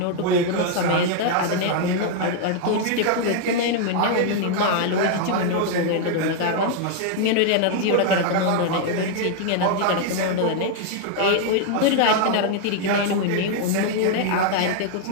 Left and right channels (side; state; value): both; different; correlation 0.00